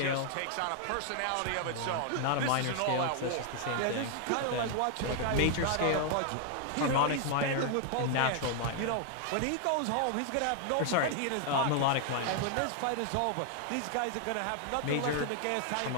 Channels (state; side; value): different; both; correlation 0.00